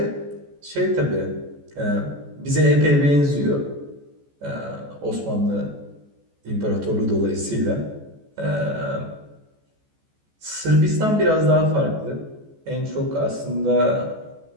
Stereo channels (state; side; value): late; left; 14 ms